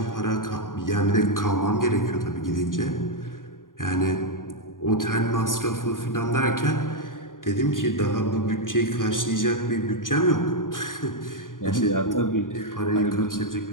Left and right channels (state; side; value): late; right; 0.89 ms